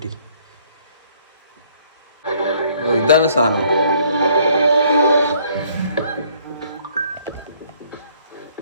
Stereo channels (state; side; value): inverted; both; correlation -0.62